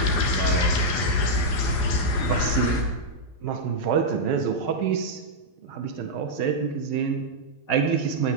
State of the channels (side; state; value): right; late; 12 ms